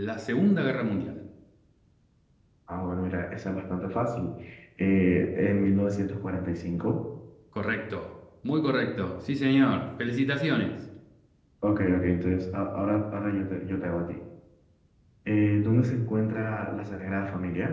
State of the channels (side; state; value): both; identical; correlation 1.00